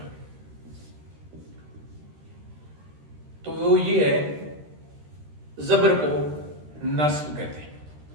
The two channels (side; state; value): left; late; 13 ms